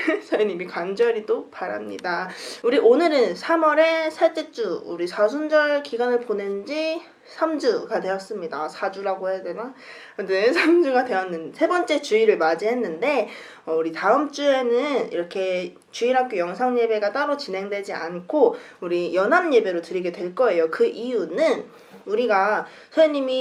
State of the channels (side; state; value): both; identical; correlation 1.00